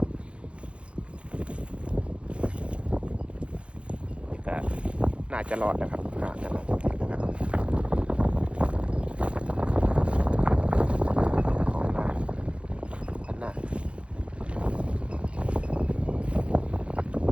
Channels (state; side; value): late; left; 0.059 ms